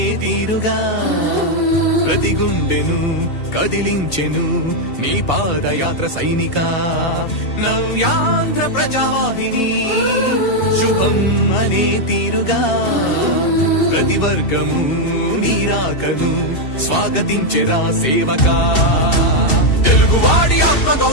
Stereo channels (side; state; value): right; late; 2.7 ms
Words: తీరుగా ప్రతి గుండెను కదిలించెను నీ పాదయాత్ర సైనిక నవ్యాంధ్ర ప్రజావాహిని శుభం అనే తీరుగా ప్రతి వర్గము నీరాకను స్వాగతించెరా సేవకా తెలుగువాడి ఆత్మ